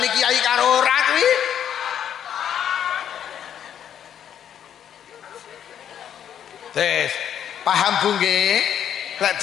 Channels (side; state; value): right; quieter; 9.4 dB